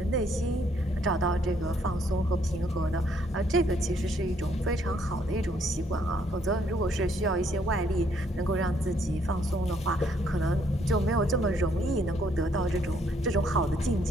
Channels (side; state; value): both; normal; correlation 0.68